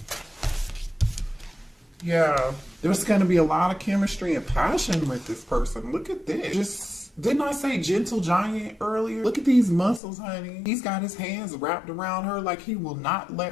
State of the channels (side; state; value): right; drops out; at 10.0 s